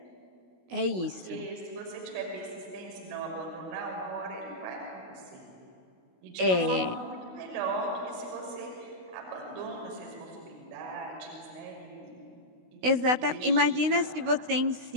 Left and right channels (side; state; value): left; late; 16 ms